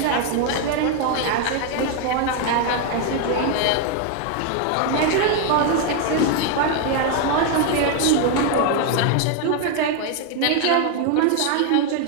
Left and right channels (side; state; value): both; different; correlation 0.01